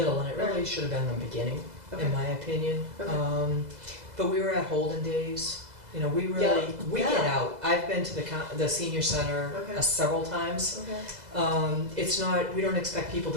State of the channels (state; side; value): late; left; 2.0 ms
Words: and it really should have been the beginning, Okay. in my opinion. Okay. But we were at Holden Days, You know, we Yeah. really, we get Yeah. out. I've been to the senior center Okay. several times. Okay. It's not, we don't expect people